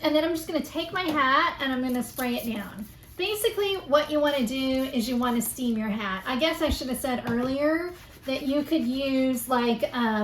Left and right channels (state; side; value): identical; both; correlation 1.00